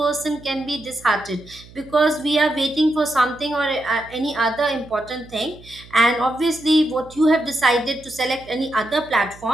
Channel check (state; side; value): noise; right; hum, 21 dB below the sound